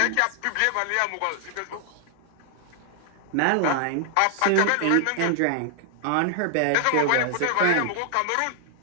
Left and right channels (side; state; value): both; different; correlation 0.00